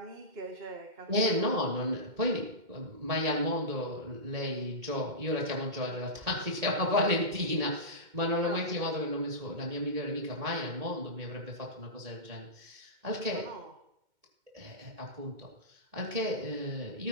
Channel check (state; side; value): late; left; 2.1 ms